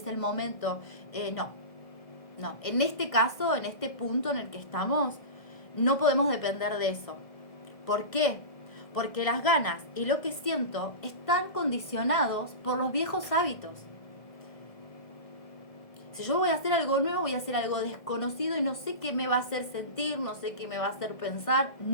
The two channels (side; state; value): right; late; 1.6 ms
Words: el momento. No. En este caso, en este punto en el que estamos, no podemos depender de eso. ¿Por qué? Porque las ganas y lo que siento están condicionados por los viejos hábitos. Si yo voy a hacer algo nuevo, voy a hacer algo desconocido y no sé qué me va a hacer sentir, no sé qué me va a hacer pensar,